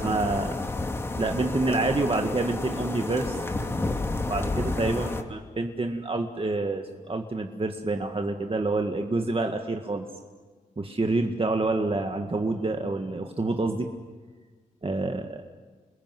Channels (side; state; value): both; normal; correlation 0.73